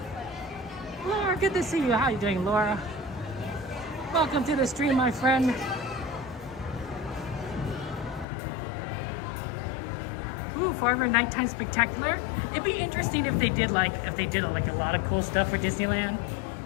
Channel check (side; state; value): right; drops out; at 8.2 s